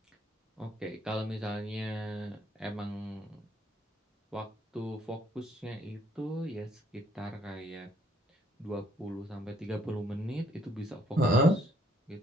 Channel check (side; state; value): both; normal; correlation 0.66